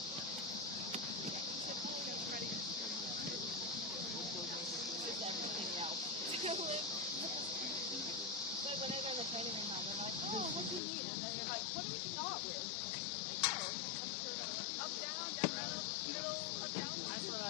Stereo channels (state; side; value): drops out; right; at 10.8 s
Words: everything else. But when they're in the training room now, they're like, oh, what do you need? And they're like, what do we start with? Like, oh, up, down, middle, up, down. I said,